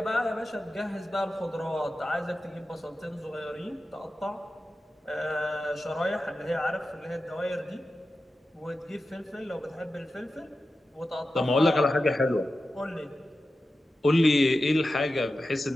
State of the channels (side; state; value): both; normal; correlation 0.92